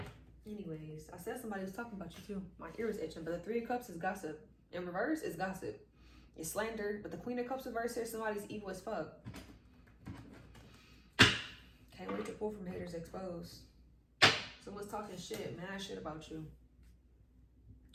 Anyways, I said somebody was talking about you too. My ear is itching, but the Three of Cups is gossip. In reverse is gossip. It's slander. But the Queen of Cups reverse here, somebody's evil as fuck. Can't wait to pull from haters exposed. Someone's talking shit, mad shit about you.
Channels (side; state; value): both; identical; correlation 1.00